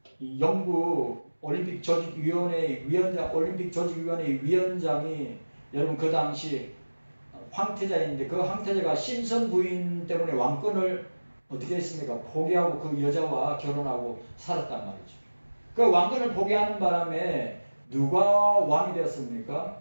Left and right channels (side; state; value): both; inverted; correlation -1.00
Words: 영국 올림픽 조직위원회 위원장이, 여러분 그 당시 황태자인데 그 황태자가 심선 부인 때문에 왕권을 어떻게 했습니까? 포기하고 그 여자와 결혼하고 살았단 말이죠. 그 왕권을 포기하는 바람에 누가 왕이 되었습니까?